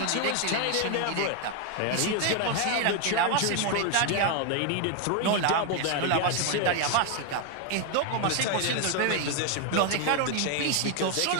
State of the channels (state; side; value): different; both; correlation 0.01